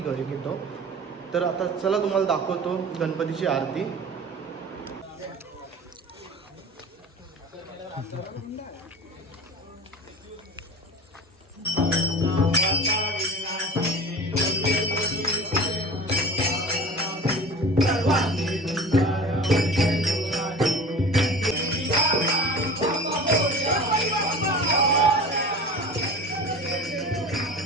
तर आता चला तुम्हाला दाखवतो गणपतीची आरती।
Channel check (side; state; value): both; normal; correlation 0.36